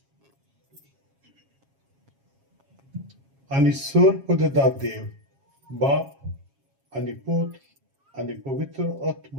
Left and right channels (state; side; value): late; left; 7.3 ms